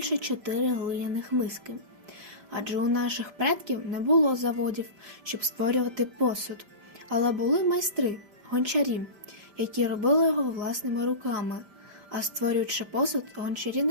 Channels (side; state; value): left; late; 5.1 ms